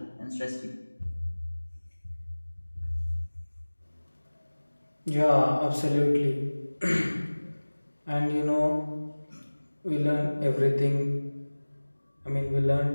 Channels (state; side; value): inverted; both; correlation -1.00